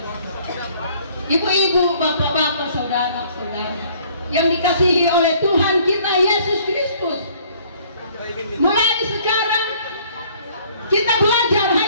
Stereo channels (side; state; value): both; inverted; correlation -0.58